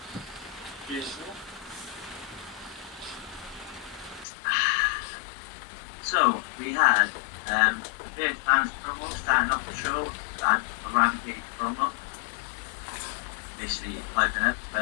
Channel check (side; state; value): right; drops out; at 4.2 s